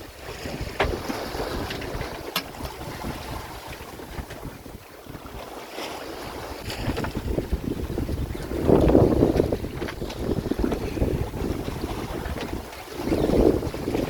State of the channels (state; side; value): identical; both; correlation 1.00